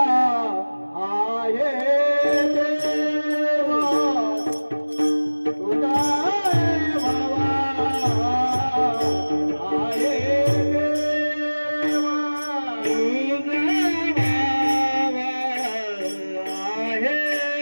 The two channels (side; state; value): both; inverted; correlation -1.00